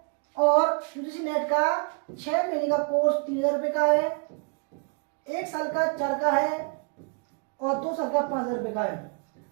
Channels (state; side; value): quieter; left; 36.9 dB